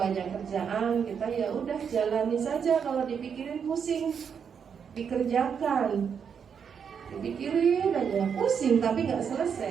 banyak kerjaan, kita ya udah jalani saja. Kalau dipikirin pusing, dikerjakan. Dipikirin aja pusing tapi nggak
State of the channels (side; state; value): left; quieter; 7.0 dB